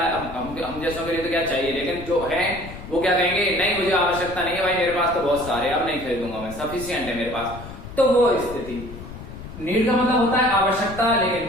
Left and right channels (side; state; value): left; noise; rumble, 13 dB below the sound